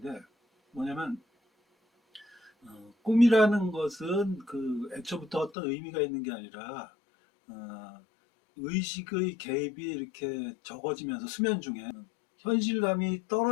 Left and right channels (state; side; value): drops out; right; at 5.5 s